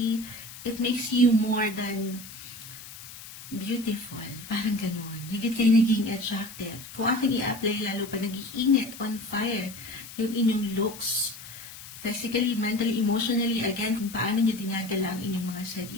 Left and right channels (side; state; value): left; noise; hiss, 15 dB below the sound